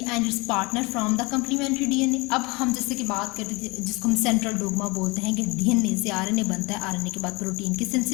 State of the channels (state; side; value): quieter; right; 25.7 dB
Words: its partner from the complementary DNA। अब हम जैसे कि बात करते थे जिसको हम सेंट्रल डोग्मा बोलते हैं कि DNA से RNA बनता है, RNA के बाद प्रोटीन की